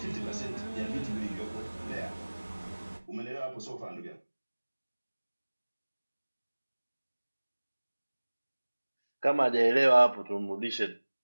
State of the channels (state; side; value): inverted; both; correlation -1.00